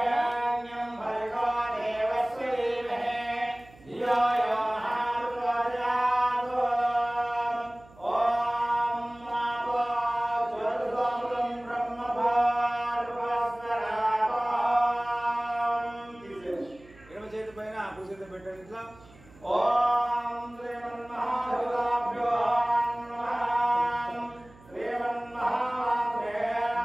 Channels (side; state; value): right; noise; hum, 24 dB below the sound